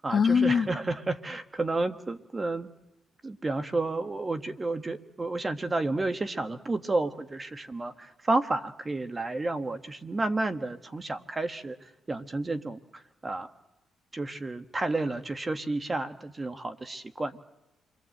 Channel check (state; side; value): normal; both; correlation 0.89